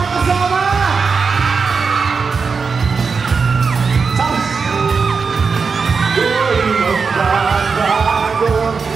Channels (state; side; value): quieter; left; 5.1 dB